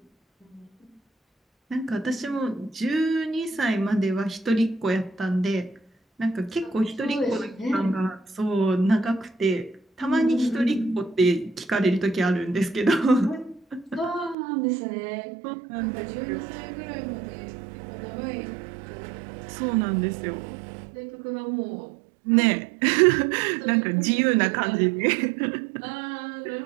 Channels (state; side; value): drops out; left; at 14.4 s